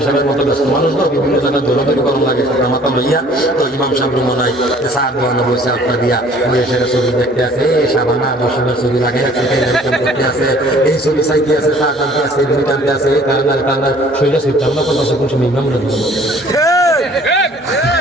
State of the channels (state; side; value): normal; both; correlation 0.54